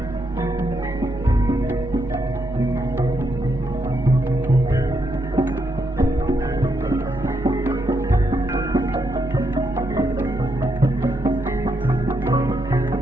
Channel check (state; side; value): normal; both; correlation 0.79